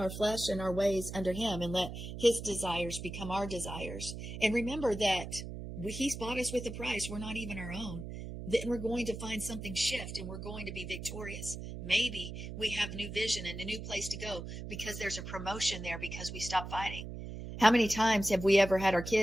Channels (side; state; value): right; noise; hum, 8 dB below the sound